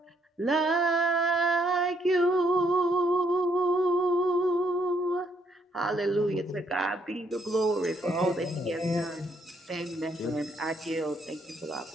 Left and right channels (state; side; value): normal; both; correlation 0.71